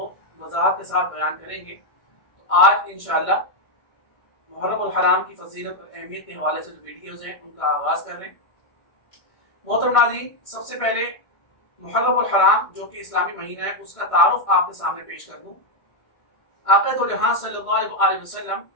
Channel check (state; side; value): late; right; 1.6 ms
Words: وضاحت کے ساتھ بیان کریں گے۔ تو آج انشاءاللہ محرم الحرام کی فضیلت اور اہمیت کے حوالے سے جو ویڈیوز ہیں ان کا آغاز کر رہے ہیں۔ محترم ناظرین، سب سے پہلے محرم الحرام جو کہ اسلامی مہینہ ہے اس کا تعارف آپ کے سامنے پیش کر دوں۔ آقا دو جہاں صلی اللہ علیہ وسلم